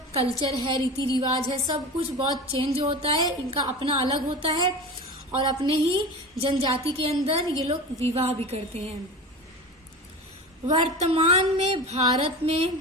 कल्चर है, रीति रिवाज है, सब कुछ बहुत चेंज होता है, इनका अपना अलग होता है और अपने ही जनजाति के अंदर ये लोग विवाह भी करते हैं। वर्तमान में भारत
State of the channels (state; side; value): normal; both; correlation 0.30